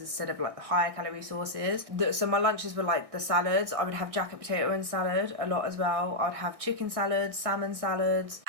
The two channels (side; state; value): left; late; 1.6 ms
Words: of like the higher calorie sauces. So my lunches were like the salads. I would have jacket potato and salad a lot as well. I'd have chicken salads, salmon salads.